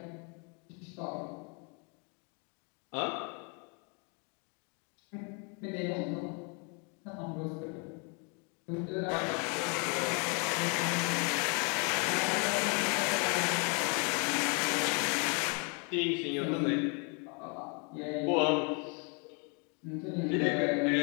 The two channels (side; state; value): right; quieter; 35.6 dB